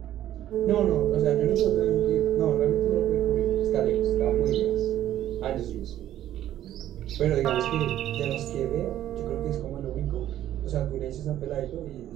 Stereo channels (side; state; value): left; quieter; 12.3 dB